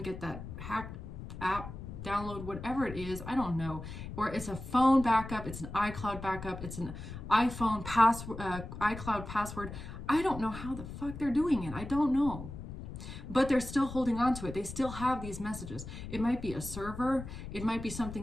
get that hacked app, download, whatever it is, I don't know. Or it's a phone backup, it's an iCloud backup, it's an iPhone iCloud password. I don't know how the fuck they're doing it. I don't know. But they're still holding on to it. They still have these messages. It might be a server. It might be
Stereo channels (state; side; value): noise; left; rumble, 10 dB below the sound